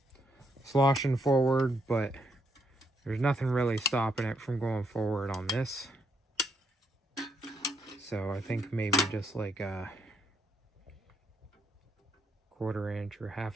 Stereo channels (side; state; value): both; normal; correlation 0.75